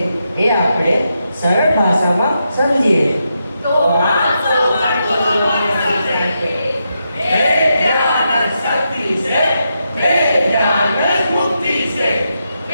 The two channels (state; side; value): inverted; both; correlation -0.84